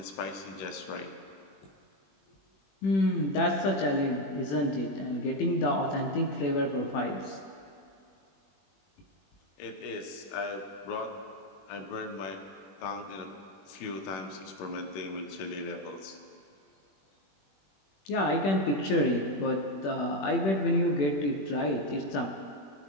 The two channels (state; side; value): late; right; 21 ms